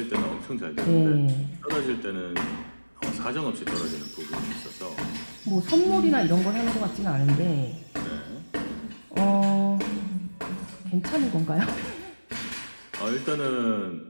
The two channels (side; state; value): both; inverted; correlation -1.00